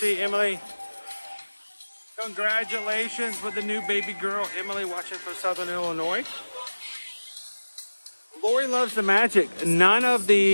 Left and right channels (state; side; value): inverted; both; correlation -1.00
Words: you, Emily. Congratulations with the new baby girl, Emily, watching from Southern Illinois. Lori loves the magic. None of